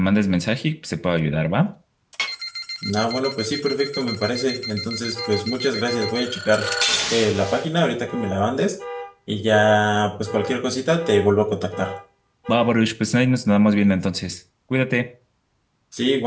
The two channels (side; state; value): both; identical; correlation 1.00